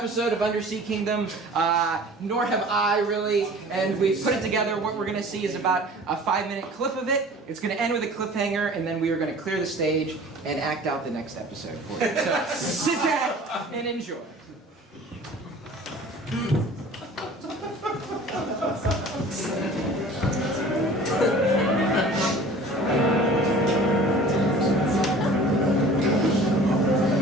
of Undersea Kingdom, nor have I really, and we've put it together. What we're going to see is about a 5-minute clip of it. It's going to end with a cliffhanger, and then we are going to clear the stage and act out the next episode for you. So sit back and enjoy.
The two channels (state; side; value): normal; both; correlation 0.45